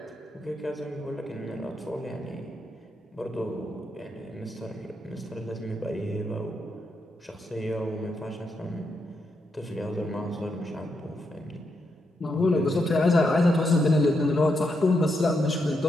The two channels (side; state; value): both; normal; correlation 0.82